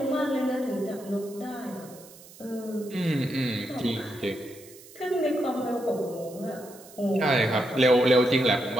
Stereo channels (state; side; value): noise; right; hiss, 21 dB below the sound